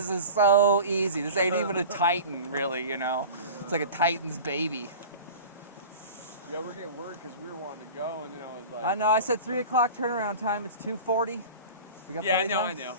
is so easy. This ain't even a Titan, really, you know. It's like a Titan's baby. Yeah, we're getting word because we were wanting to go, and then I was like... I know, I said 3 o'clock turnaround time. It's 2:40. We got yeah, plenty of I time. know.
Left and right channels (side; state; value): both; inverted; correlation -0.36